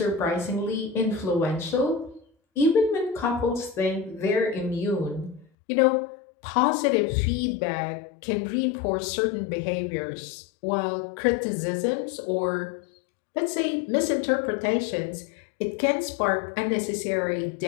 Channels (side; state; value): right; drops out; at 5.5 s